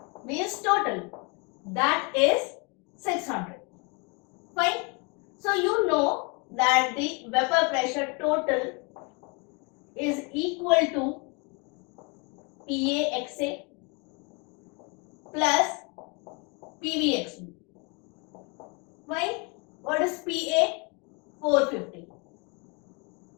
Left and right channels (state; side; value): quieter; right; 31.2 dB